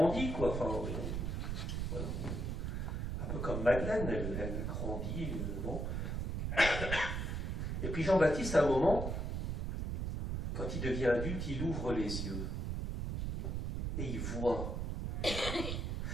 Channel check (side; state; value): right; noise; rumble, 2 dB below the sound